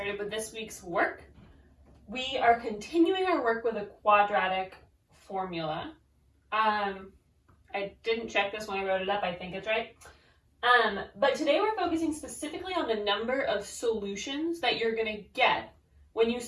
with this week's work. We are continuing our work with a quadratic formula. I didn't check this when I wrote it up, I think it's right. But today we're focusing specifically on the number of solutions that you're going to get when you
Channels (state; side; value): identical; both; correlation 1.00